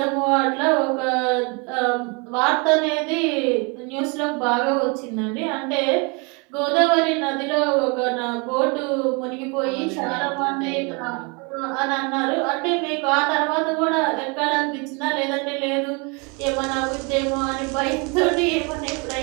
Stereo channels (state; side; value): quieter; left; 31.2 dB